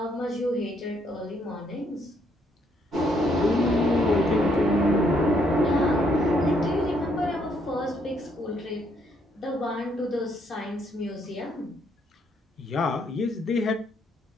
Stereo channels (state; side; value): normal; both; correlation 0.71